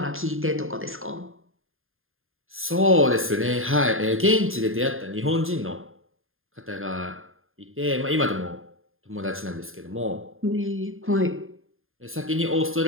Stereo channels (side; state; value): left; late; 0.60 ms